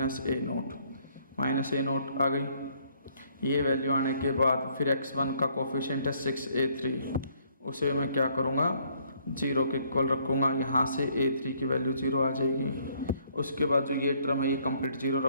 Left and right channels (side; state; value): both; inverted; correlation -0.66